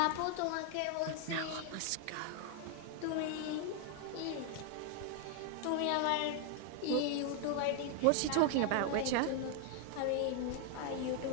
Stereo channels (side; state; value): both; different; correlation 0.00